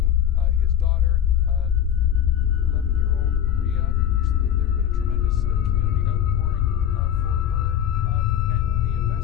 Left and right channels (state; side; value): quieter; right; 9.8 dB